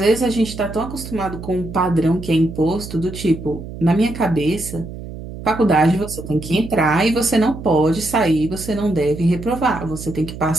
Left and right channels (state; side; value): noise; right; hum, 11 dB below the sound